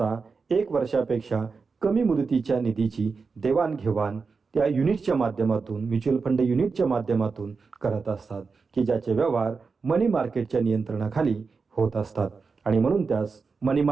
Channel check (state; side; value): quieter; left; 4.8 dB